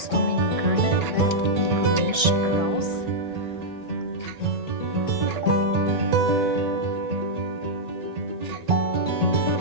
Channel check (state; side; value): late; left; 1.6 ms